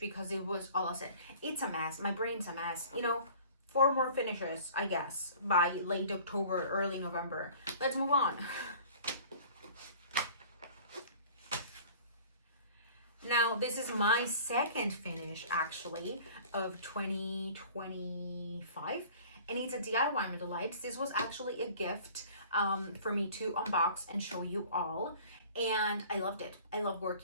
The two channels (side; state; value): both; inverted; correlation -0.47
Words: because it was all I said. It's a mess. My brain's a mess. 4 more finishes, I guess, by late October, early November. Let's move on. Now, this is my second finish, actually, of 2025. And it's a DIY Delights. This was actually a gift for me to unbox and show you all. And I loved it. I love